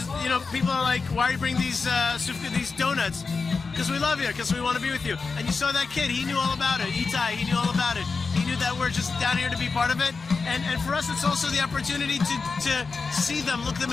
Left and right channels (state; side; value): quieter; right; 4.5 dB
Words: know, people are like, why are you bringing these donuts? Because we love you, because we want to be with you. And you saw that kid, he knew all about it. Itai, he knew all about it. He knew that we're just down here to be part of it. And for us, it's also the opportunity to see them, look them